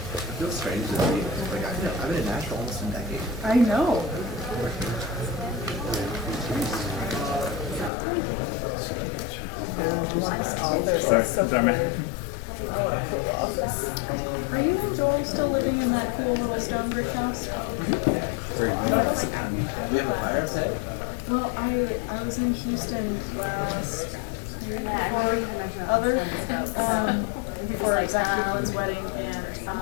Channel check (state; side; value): drops out; right; at 7.9 s